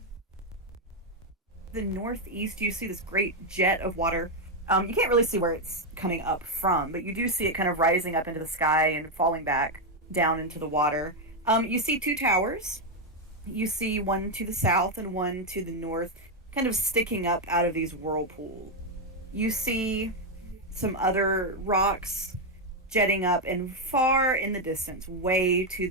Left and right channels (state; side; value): normal; both; correlation 0.03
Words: the northeast, you see this great jet of water. You can't really see where it's coming up from, but you do see it kind of rising up into the sky and falling back down into the water. You see two towers. You see one to the south and one to the north, kind of sticking up out of these whirlpools. you see some other rocks jetting up, and far in the distance, way to